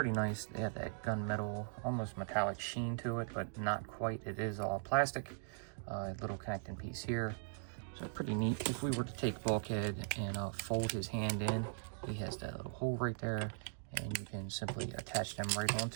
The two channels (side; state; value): left; silent; digital silence